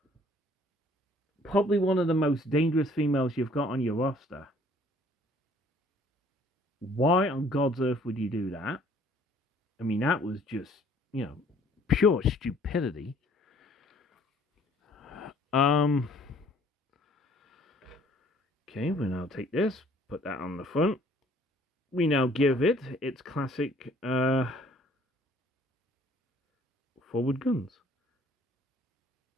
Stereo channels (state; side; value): normal; both; correlation 0.58